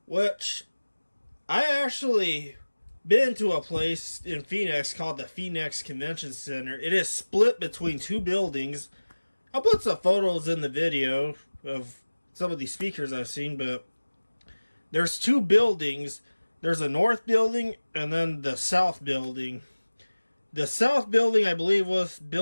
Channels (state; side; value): inverted; both; correlation -1.00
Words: Which, I actually been to a place in Phoenix called the Phoenix Convention Center. It is split between two buildings. I'll put some photos in the video of some of these speakers I've seen, but there's two buildings. There's a north building and then the south building. The south building, I believe, was